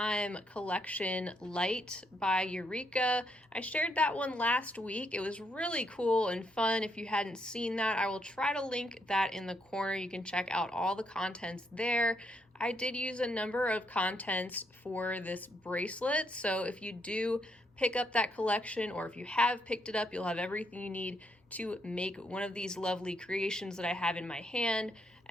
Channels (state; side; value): normal; both; correlation 0.75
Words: collection Light by Eureka. I shared that one last week. It was really cool and fun. If you hadn't seen that, I will try to link that in the corner. You can check out all the contents there. I did use a number of contents for this bracelet, so if you do pick up that collection, or if you have picked it up, you'll have everything you need to make one of these lovely creations that I have in my hand.